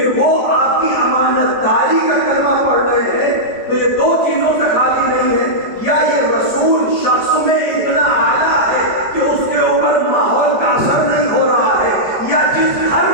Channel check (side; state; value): right; late; 5.1 ms